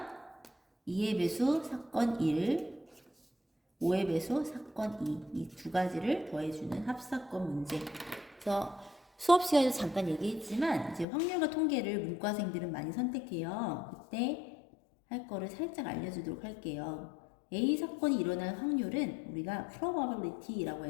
2의 배수 사건 1, 5의 배수 사건 2, 이 두 가지를 더해주는 합사건 문제. 그래서 수업 시간에도 잠깐 얘기했지만 이제 확률과 통계를 문과생들은 많이 선택해요. 그때 할 거를 살짝 알려주도록 할게요. A 사건이 일어날 확률은 우리가 probability라고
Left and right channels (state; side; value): drops out; right; at 11.1 s